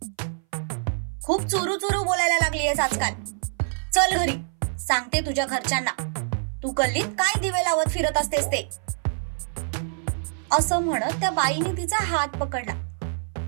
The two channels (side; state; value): left; silent; 59 dB below the other